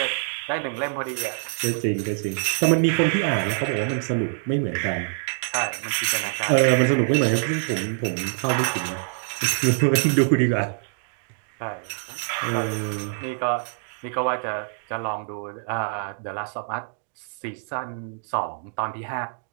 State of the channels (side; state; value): left; silent; 62 dB below the other